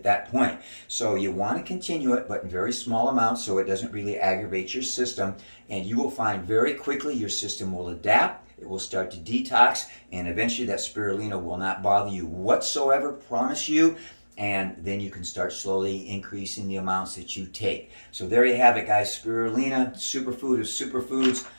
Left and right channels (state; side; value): inverted; both; correlation -1.00